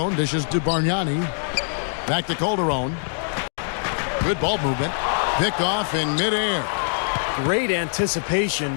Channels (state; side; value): silent; right; digital silence